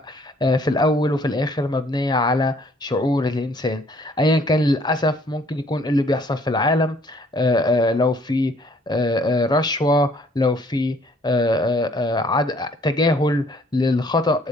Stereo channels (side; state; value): both; normal; correlation 0.61